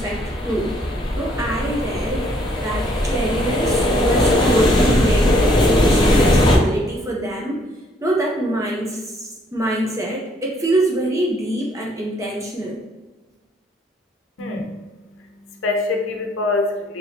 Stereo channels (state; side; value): normal; both; correlation 0.66